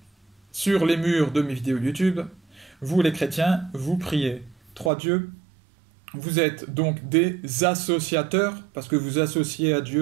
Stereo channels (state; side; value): drops out; left; at 4.9 s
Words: sur les murs de mes vidéos YouTube. Vous les chrétiens, vous priez trois dieux. Vous êtes donc des associateurs, parce que vous associez à